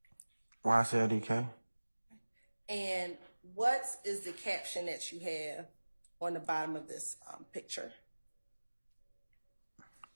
YSL And what is the caption that you have on the bottom of this picture?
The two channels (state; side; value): inverted; both; correlation -1.00